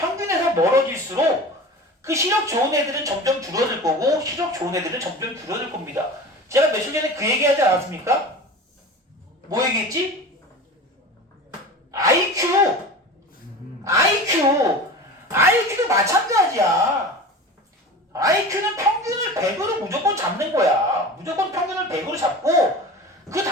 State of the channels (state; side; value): normal; both; correlation 0.33